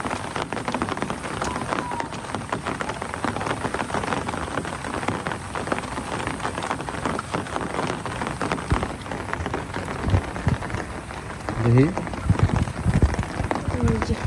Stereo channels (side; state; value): both; identical; correlation 1.00